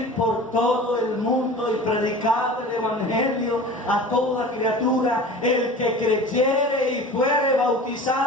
por todo el mundo y predicar el evangelio a toda criatura. El que creyere y fuere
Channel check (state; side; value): normal; both; correlation 0.38